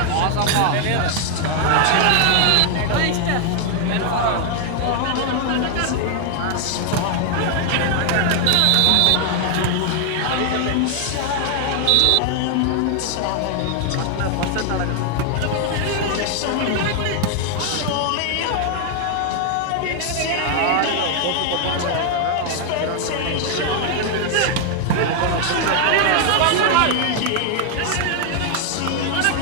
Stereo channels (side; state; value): both; different; correlation 0.00